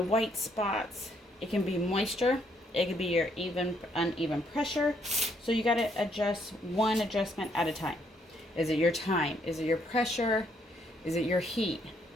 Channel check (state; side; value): normal; both; correlation 0.71